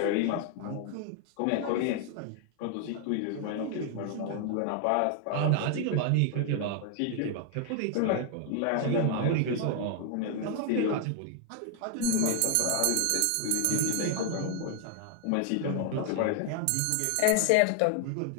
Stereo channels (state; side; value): different; both; correlation 0.00